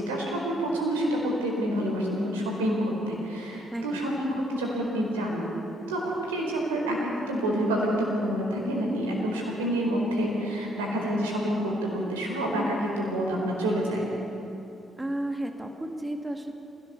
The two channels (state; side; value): normal; both; correlation 0.67